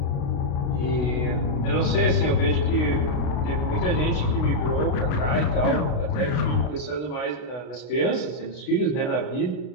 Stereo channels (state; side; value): late; right; 32 ms